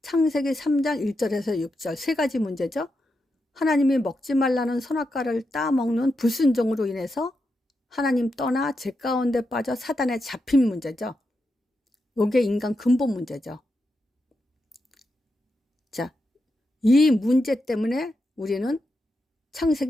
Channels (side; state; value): both; normal; correlation 0.86